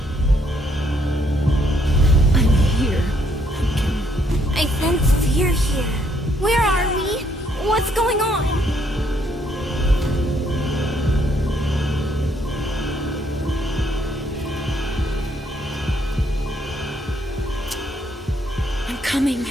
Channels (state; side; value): normal; both; correlation 0.70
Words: I'm here, Pumpkin. I sense fear here. Where are we? What's going on? I'm coming.